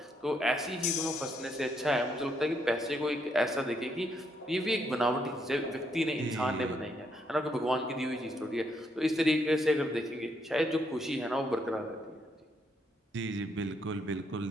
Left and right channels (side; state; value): both; normal; correlation 0.75